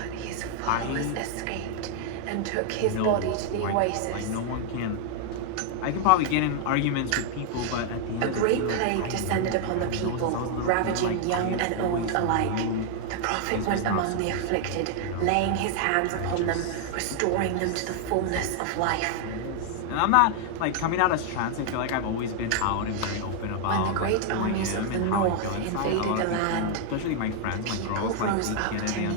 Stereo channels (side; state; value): both; different; correlation 0.00